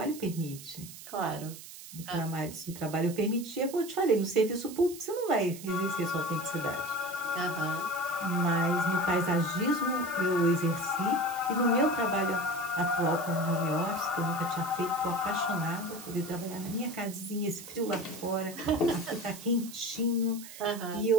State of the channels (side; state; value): right; noise; hiss, 14 dB below the sound